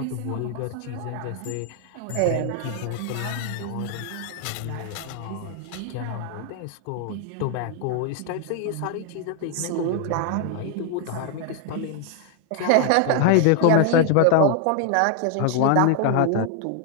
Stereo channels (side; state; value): both; different; correlation 0.00